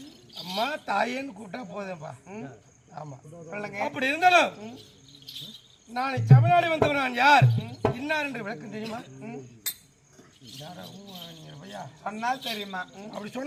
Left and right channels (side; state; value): both; identical; correlation 1.00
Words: அம்மா தாயேன்னு கூப்பிட்டா போதும்பா. ஆமா சொல்லுங்க. அப்படி இருந்தாலும் நான் தமிழ்நாடு வந்தவன். நான் யார் இன்னார் என்று விளக்கம் தெரியுமா? சொன்னால் தெரியுமா? அப்படி